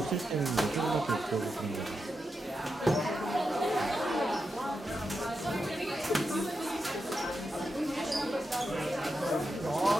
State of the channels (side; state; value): both; normal; correlation 0.87